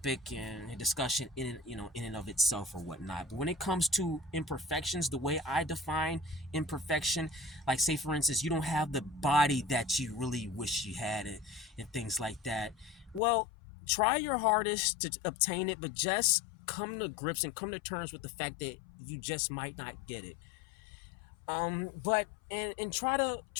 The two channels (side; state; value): right; drops out; at 13.2 s